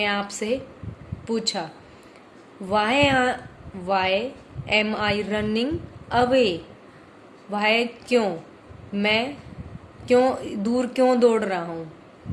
आप से पूछा, वाई एम आई रनिंग अवे, वाई क्यों, मैं दूर क्यों दौड़ रहा हूँ।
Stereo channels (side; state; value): both; identical; correlation 1.00